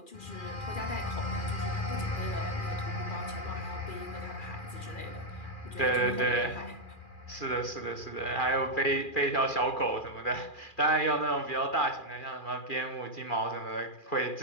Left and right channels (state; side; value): late; right; 2.4 ms